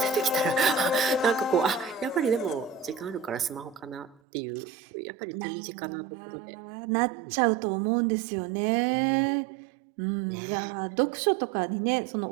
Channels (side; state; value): left; drops out; at 4.2 s